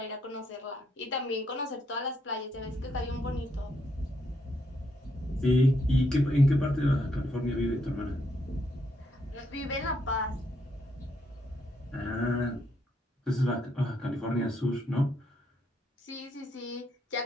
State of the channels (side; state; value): both; normal; correlation 0.75